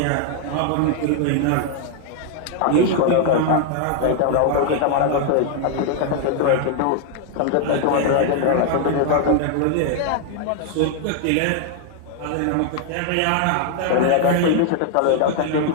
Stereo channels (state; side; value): different; both; correlation 0.00